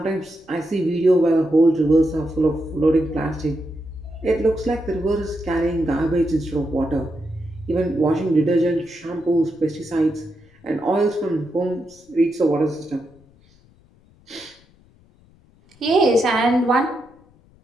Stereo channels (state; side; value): noise; left; rumble, 30 dB below the sound